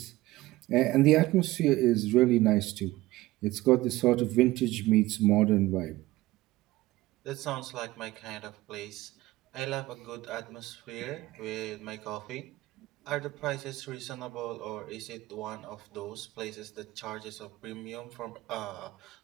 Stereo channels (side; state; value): left; quieter; 18.0 dB